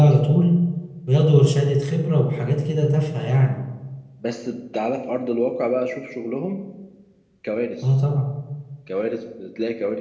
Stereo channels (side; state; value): both; identical; correlation 1.00